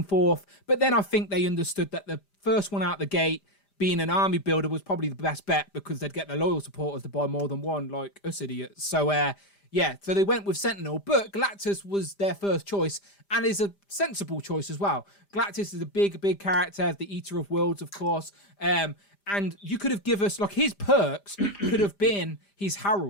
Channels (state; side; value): late; right; 5.0 ms